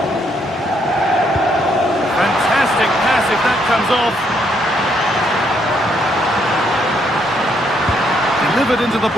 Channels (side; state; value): both; normal; correlation 0.73